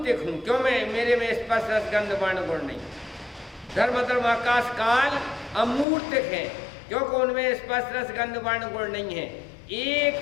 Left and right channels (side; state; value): right; drops out; at 5.9 s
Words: हूं। क्यों? मेरे में स्पर्श, रस, गंध, वर्ण, गुण नहीं। धर्म, आकाश, काल अमूर्तिक है, क्योंकि उनमें स्पर्श, रस, गंध, वर्ण, गुण नहीं है।